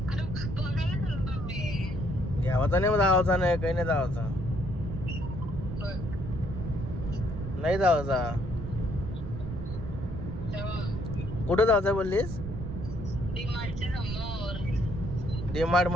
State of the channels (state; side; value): noise; right; rumble, 7 dB below the sound